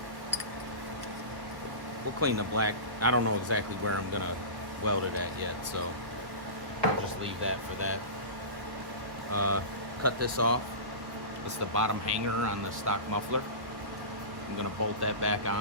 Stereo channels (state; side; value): late; left; 1.1 ms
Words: We'll clean the black. I don't know exactly where I'm going to weld it at yet, so I'll just leave that for that. Cut this off. It's the bottom hanger on the stock muffler. I'm going to bolt that back